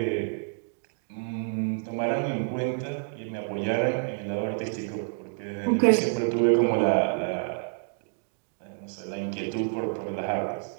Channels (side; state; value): left; silent; 59 dB below the other